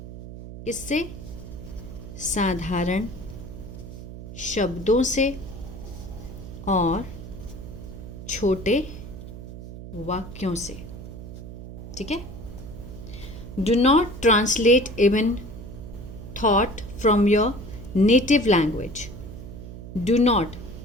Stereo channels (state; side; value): noise; right; hum, 12 dB below the sound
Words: किससे, साधारण शब्दों से और छोटे वाक्यों से, ठीक है। Do not translate even thought from your native language. Do not,